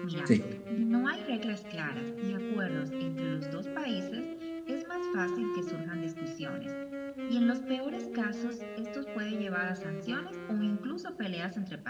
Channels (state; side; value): identical; both; correlation 1.00